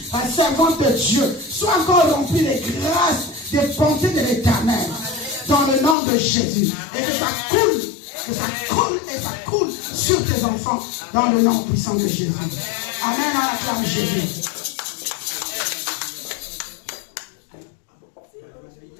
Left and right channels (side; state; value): right; drops out; at 6.0 s